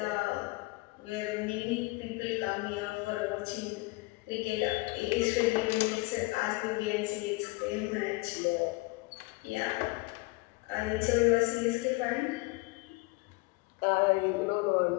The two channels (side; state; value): right; quieter; 24.4 dB